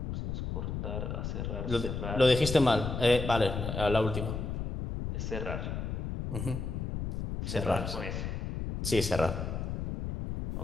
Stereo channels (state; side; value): noise; left; rumble, 4 dB below the sound